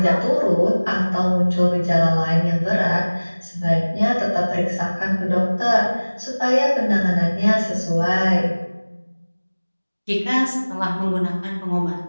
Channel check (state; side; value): inverted; both; correlation -1.00